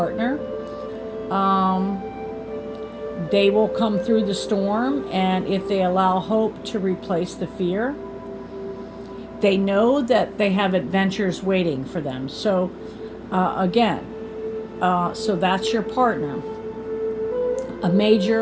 They will come through the storm, and if they allow hope to replace the fear, they know that they have adventures waiting for them. So so that's your partner. A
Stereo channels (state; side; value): identical; both; correlation 1.00